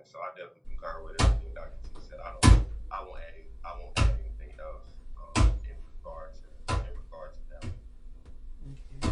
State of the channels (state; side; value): identical; both; correlation 1.00